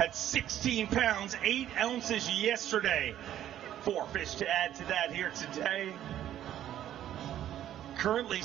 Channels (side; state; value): left; quieter; 11.7 dB